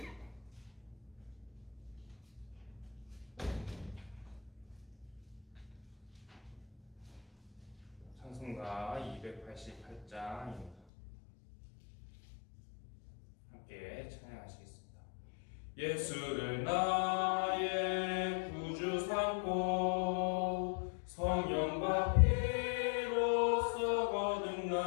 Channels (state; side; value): drops out; right; at 10.8 s